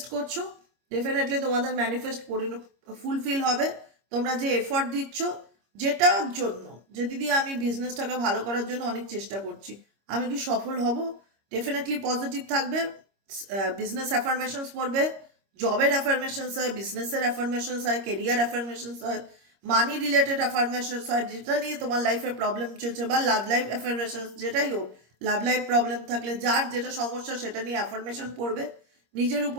করছো, ডেফিনেটলি তোমাদের ম্যানিফেস্ট ফুলফিল হবে। তোমরা যে এফর্ট দিচ্ছ যেটার জন্য, যে দিদি আমি বিজনেসটাকে ভালো করার জন্য অনেক চেষ্টা করছি, আমি কি সফল হব? ডেফিনেটলি পজিটিভ থাকবে। বিজনেস অ্যাফার্মেশনস পড়বে, জবের অ্যাফার্মেশনস হয়, বিজনেসের অ্যাফার্মেশনস হয়, কেরিয়ার অ্যাফার্মেশনস হয়, মানি রিলেটেড অ্যাফার্মেশনস হয়, যেটা নিয়ে তোমার লাইফে প্রবলেম চলছে, বা লাভ লাইফ অ্যাফার্মেশনস, যেটাই হোক, লাভ লাইফ প্রবলেম থাকলে যার যেটা সমস্যা সেটা নিয়ে অ্যাফার্মেশন পড়বে। নিজের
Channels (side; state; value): left; late; 25 ms